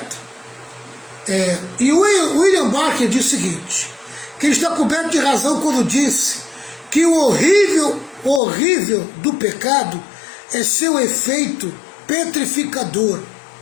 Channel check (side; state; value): right; drops out; at 8.4 s